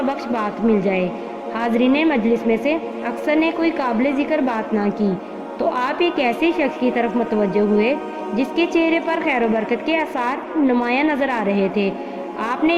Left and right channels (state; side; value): identical; both; correlation 1.00